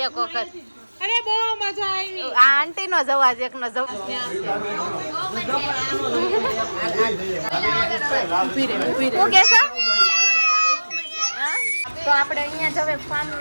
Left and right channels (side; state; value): both; inverted; correlation -1.00